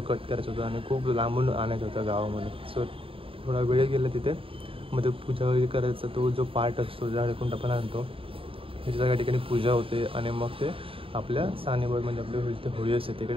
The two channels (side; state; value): left; late; 0.26 ms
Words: कट करायचं होतं आणि खूप लांबून आणायचं होतं गावामध्ये. सो थोडा वेळ गेला तिथे. मग ते पूजा वगैरे करायचा तो जो पार्ट असतो ज्याकडून आपण आणतो त्याच्या सगळ्या ठिकाणी पूजा होते आणि मग ते आपल्या सानेवर म्हणजे आपली होळी असते